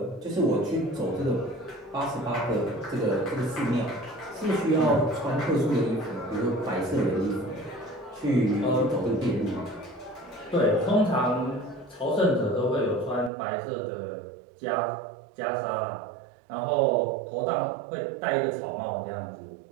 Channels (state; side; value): drops out; left; at 13.3 s